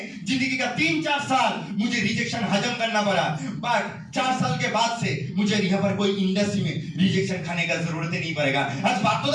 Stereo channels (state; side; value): identical; both; correlation 1.00